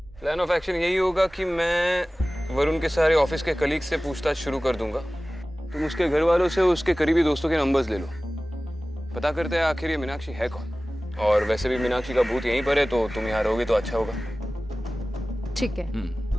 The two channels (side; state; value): both; normal; correlation 0.97